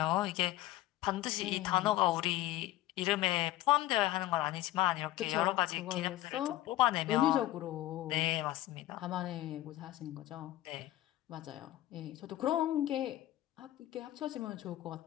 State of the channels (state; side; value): quieter; right; 15.4 dB